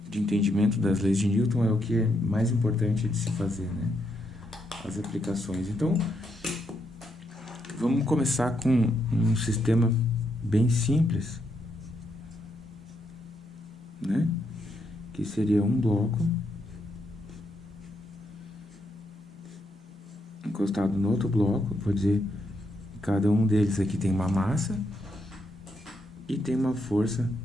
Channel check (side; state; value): both; normal; correlation 0.79